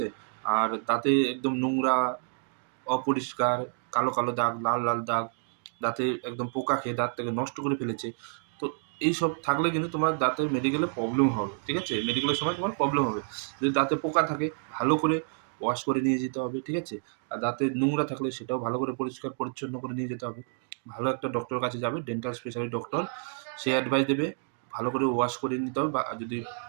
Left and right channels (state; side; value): silent; left; 59 dB below the other